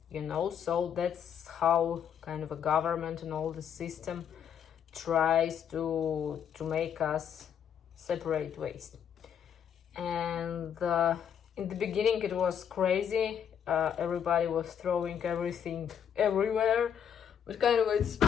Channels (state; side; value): quieter; right; 8.4 dB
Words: you know. So that's how kind of a government and all the system tries to make us separate waste. And in the beginning it was crazy, everybody was throwing everything everywhere, but kind of it's,